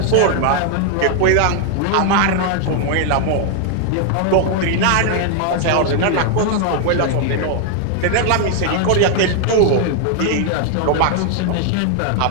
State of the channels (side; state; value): both; different; correlation 0.00